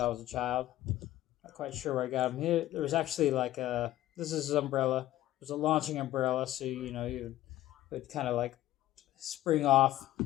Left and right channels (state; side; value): quieter; right; 14.5 dB